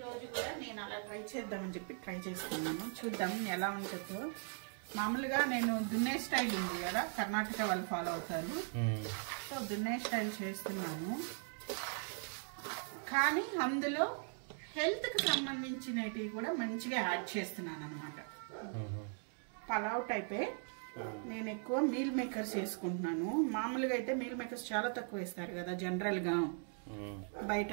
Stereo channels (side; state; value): left; silent; 52 dB below the other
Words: కూడా నేను అలా ట్రై చేద్దామని చెప్పి ట్రై చేస్తున్నాను. చూద్దాం ఎలా ఉంటుందో. మామూలుగా నేను దున్నే స్టైల్ ఉంది కదా, కర్ణాటక వాళ్ళు ఫాలో అవుతారు. సో దున్నే స్టైల్ చేస్తున్నాను, కానీ అందులో హెల్త్కి సంబంధించినవి కూడా మంచిగా యాడ్ చేస్తున్నాను అనమాట. పలావ్ టైపే. నేను ఎక్కువ మీల్ మేకర్స్ వేసుకుంటున్నాను. మామూలుగా అయితే మీల్ మేకర్స్ చాలా తక్కువ వేస్తారు కదా జనరల్గా, బయట